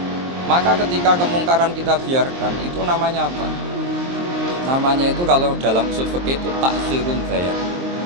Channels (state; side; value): late; left; 23 ms